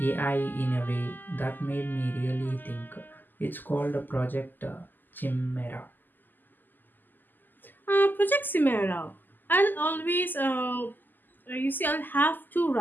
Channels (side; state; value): right; late; 0.089 ms